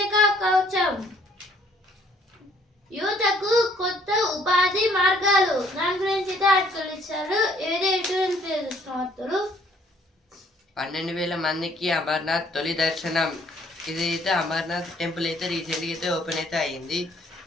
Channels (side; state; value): both; normal; correlation 0.62